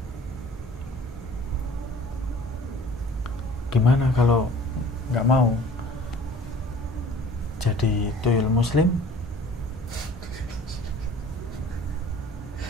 Gimana kalau nggak mau jadi tuyul muslim?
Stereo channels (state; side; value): normal; both; correlation 0.49